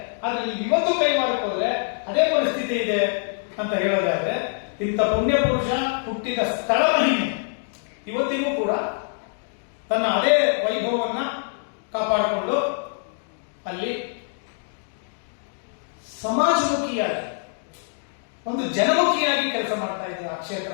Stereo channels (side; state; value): right; silent; digital silence